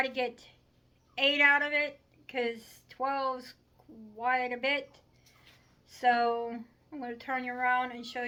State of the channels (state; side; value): identical; both; correlation 1.00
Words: to get 8 out of it because 12 is quite a bit. So I'm going to turn you around and show